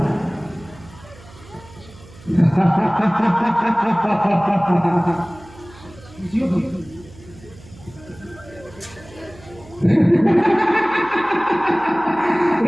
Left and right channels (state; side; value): noise; right; hum, 22 dB below the sound